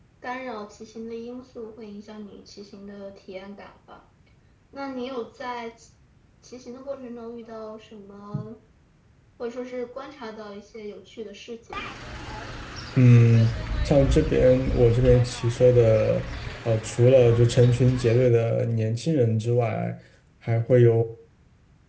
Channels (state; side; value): identical; both; correlation 1.00